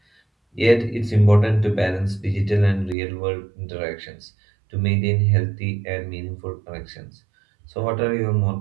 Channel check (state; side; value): drops out; left; at 3.0 s